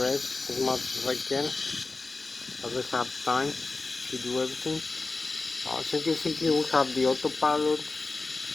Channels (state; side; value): quieter; right; 3.6 dB